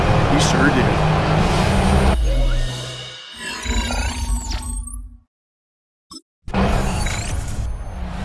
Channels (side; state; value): both; identical; correlation 1.00